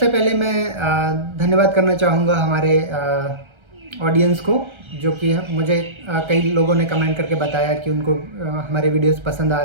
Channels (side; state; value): left; late; 1.3 ms